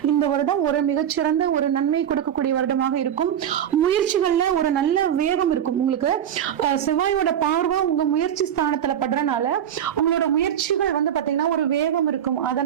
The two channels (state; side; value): quieter; left; 9.8 dB